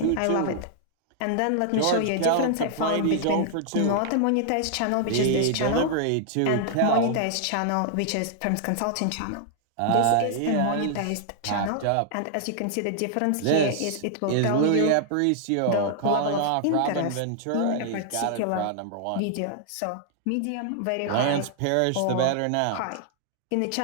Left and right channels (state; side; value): different; both; correlation -0.01